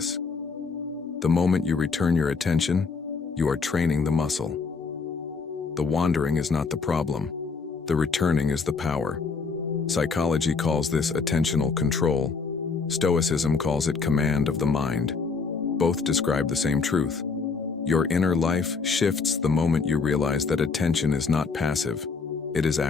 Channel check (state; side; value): quieter; right; 4.8 dB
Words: The moment you return your attention, you are training the muscle. The wandering is not the problem. The returning is the power. Psychology calls this attentional control. Stoicism calls it command of the mind. Both describe the same truth. Your inner life shifts the moment you realize that attention is not passive. It is